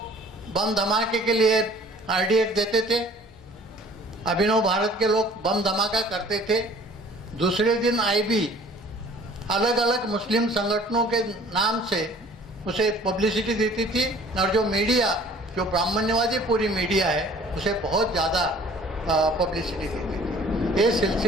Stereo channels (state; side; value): normal; both; correlation 0.51